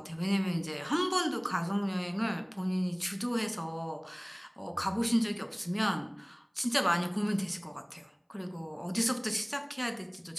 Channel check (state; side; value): identical; both; correlation 1.00